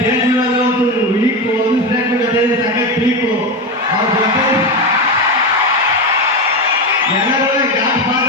ಮೇಲೆ ಒಂದು ವೀಕು ಒಂದು ಸ್ಟೇಜ್ ಜೊತೆ ಸಖತ್ ವೀಕು ಅವ್ರ ಜೊತೆ ಎಲ್ಲರೂ ಗಾಡ್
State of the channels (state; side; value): normal; both; correlation 0.16